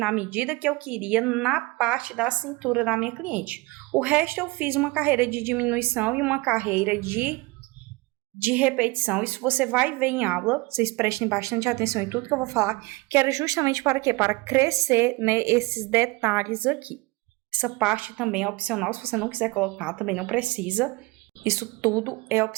medida que eu queria na parte da cintura da minha cliente. O resto eu fiz uma carreira de diminuição e uma carreira de repetição. Isso você vai ver em aula. Vocês prestem bastante atenção em tudo que eu vou falar. Que era justamente para quê? Para crescer, né, esses detalhes aqui. Essa parte também é opcional, se você não quiser colocar, também não precisa. Isso tudo é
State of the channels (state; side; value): quieter; left; 23.3 dB